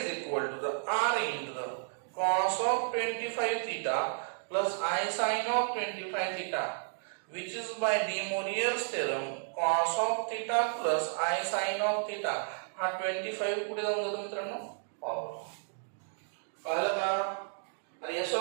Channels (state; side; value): silent; left; digital silence